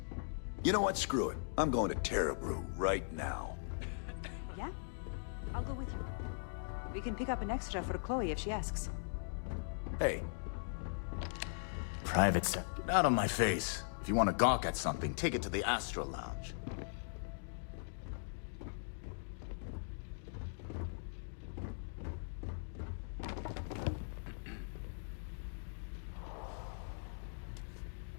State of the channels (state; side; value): silent; right; digital silence